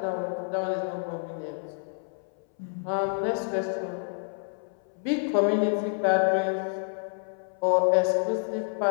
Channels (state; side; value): silent; right; 59 dB below the other